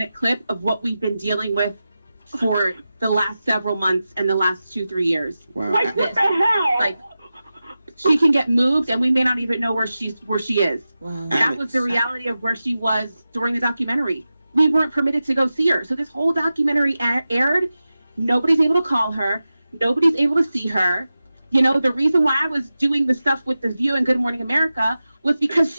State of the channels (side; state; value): both; inverted; correlation -0.93